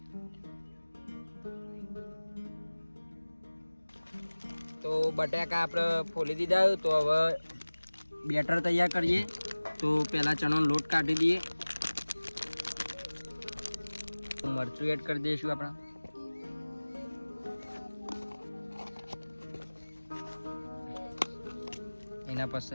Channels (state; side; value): inverted; both; correlation -1.00